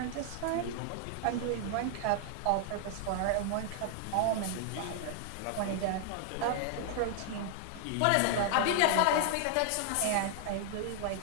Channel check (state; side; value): different; both; correlation 0.00